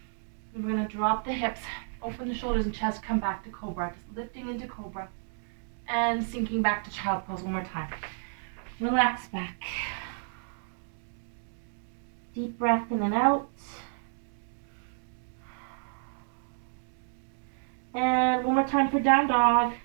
Then we're going to drop the hips, open the shoulders and chest, come back to cobra. Just lifting into cobra and sinking back to child pose one more time. Relax back. Deep breath in and out. And one more time for down dog.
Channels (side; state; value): left; silent; digital silence